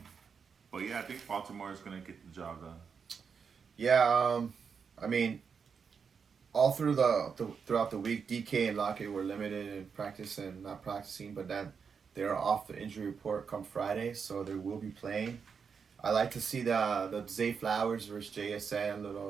But yeah, I think Baltimore is going to get the job done. Yeah, I mean, all through throughout the week, DK and Lockett were limited in practice and not practicing, but then they're off the injury report come Friday, so they will be playing. I like to see the Zay Flowers versus JSN,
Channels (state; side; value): quieter; left; 6.1 dB